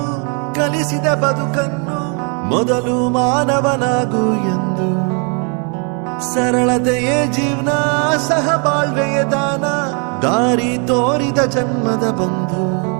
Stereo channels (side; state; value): left; quieter; 37.6 dB